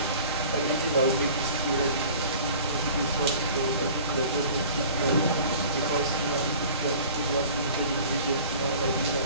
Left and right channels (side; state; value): both; inverted; correlation -0.45